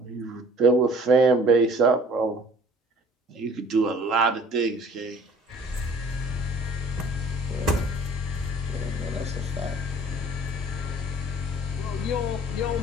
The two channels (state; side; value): normal; both; correlation 0.51